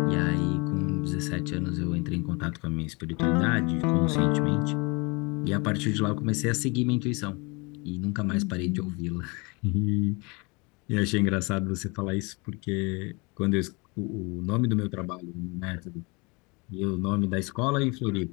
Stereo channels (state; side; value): quieter; right; 28.6 dB